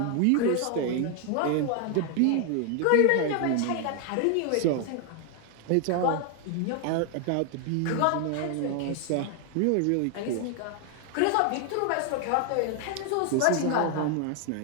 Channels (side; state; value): both; different; correlation 0.00